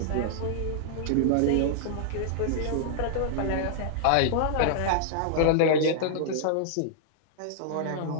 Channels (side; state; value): both; different; correlation -0.01